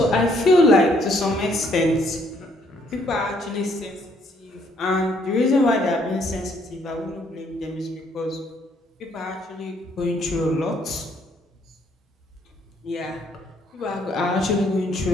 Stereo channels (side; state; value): both; normal; correlation 0.67